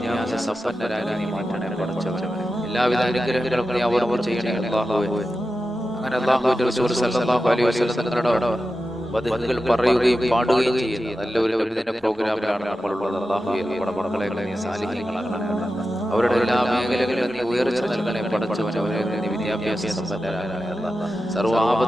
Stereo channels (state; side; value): noise; right; rumble, 30 dB below the sound